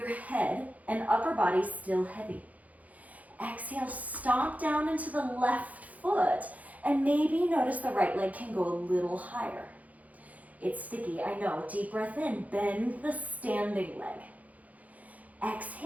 head and upper body still heavy. Exhale, stomp down into the left foot and maybe notice the right leg can go a little higher. It's sticky, I know. Deep breath in, bend the standing leg.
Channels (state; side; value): late; left; 0.074 ms